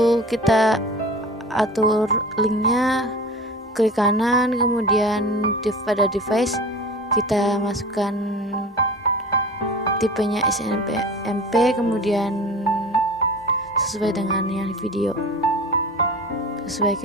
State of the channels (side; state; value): both; normal; correlation 0.37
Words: kita atur linknya, klik kanan, kemudian pada device kita masukkan tipenya SNMP, kemudian sesuai dengan yang di video, sesuai